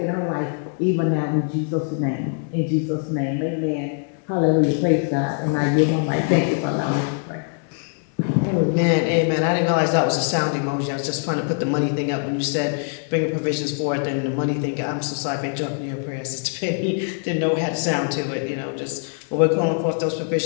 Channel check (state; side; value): silent; right; 56 dB below the other